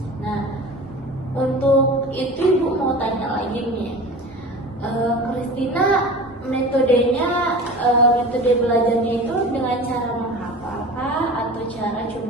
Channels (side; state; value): both; normal; correlation 0.36